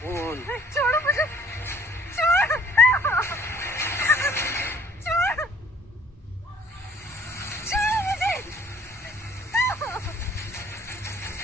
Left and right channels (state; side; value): normal; both; correlation 0.57